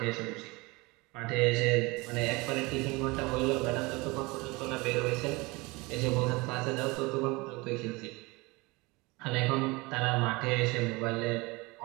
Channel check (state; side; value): quieter; left; 24.6 dB